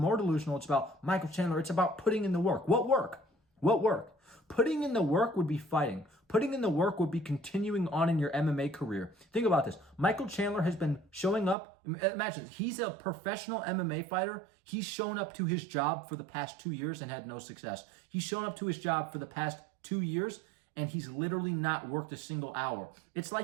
delusional, it's about Michael Chandler. It's about putting in the work. What work? What work? Putting in the work would be fighting. Putting in the work would be continuing on in your MMA career. Think about this. Michael Chandler has been showing up. Imagine, he's a professional MMA fighter. He's shown up to his job for the past 2 years and had no success. He's shown up to his job for the past 2 years and he's literally not worked a single hour. It's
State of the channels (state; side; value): drops out; left; at 11.6 s